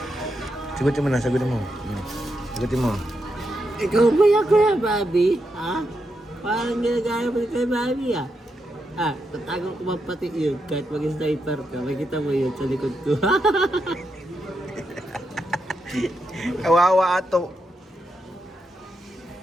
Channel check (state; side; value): normal; both; correlation 0.84